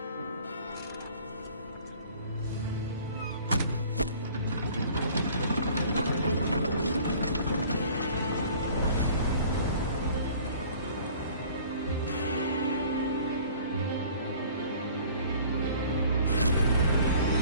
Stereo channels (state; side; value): inverted; both; correlation -0.50